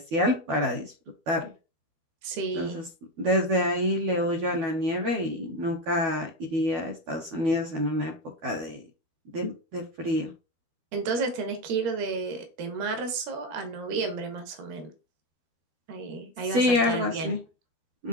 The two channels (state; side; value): late; left; 12 ms